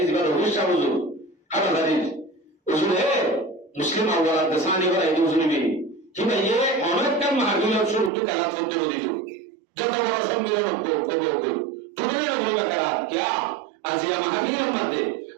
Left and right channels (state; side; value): drops out; left; at 8.1 s